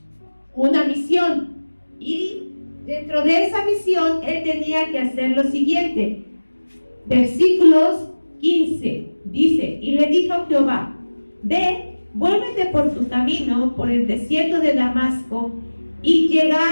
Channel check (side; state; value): both; inverted; correlation -1.00